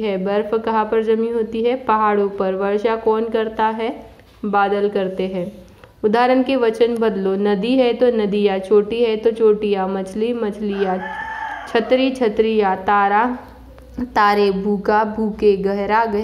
बर्फ कहाँ पर जमी होती है, पहाड़ों पर। वर्षा कौन करता है, बादल करते हैं। उदाहरण के वचन बदलो। नदी है तो नदियाँ, चोटी है तो चोटियाँ, मछली मछलियाँ, छतरी छतरियाँ, तारा तारे, भूखा भूखे, गहरा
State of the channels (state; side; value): identical; both; correlation 1.00